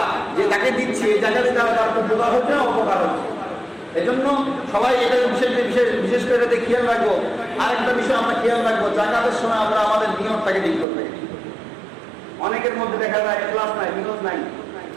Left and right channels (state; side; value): drops out; left; at 10.9 s